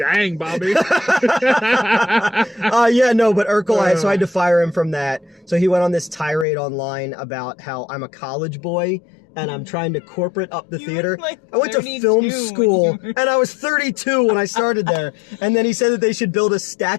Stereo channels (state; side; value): drops out; right; at 6.5 s